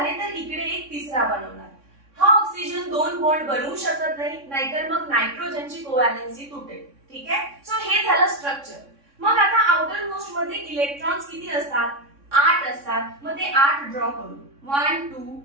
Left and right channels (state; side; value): late; left; 3.6 ms